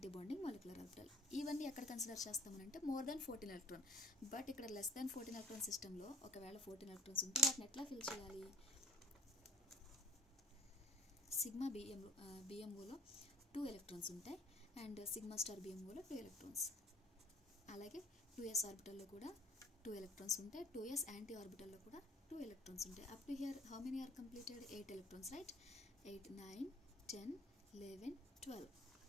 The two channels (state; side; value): normal; both; correlation 0.54